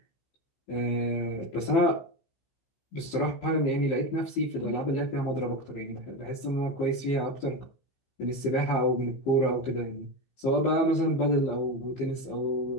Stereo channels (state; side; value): late; right; 15 ms